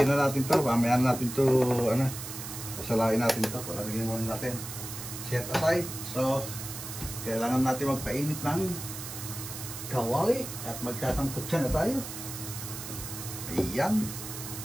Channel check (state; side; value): noise; right; hiss, 9 dB below the sound